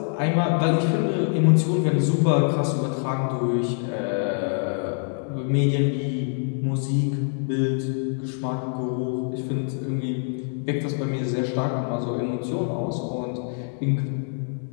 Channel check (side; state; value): right; silent; 58 dB below the other